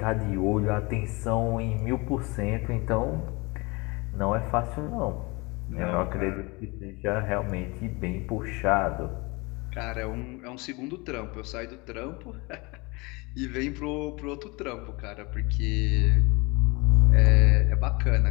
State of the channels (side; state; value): right; quieter; 25.9 dB